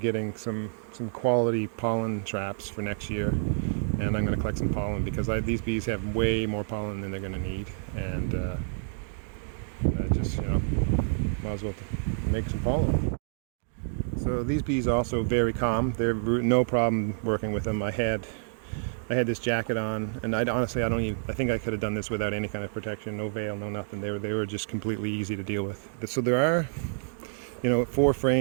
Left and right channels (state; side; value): silent; left; digital silence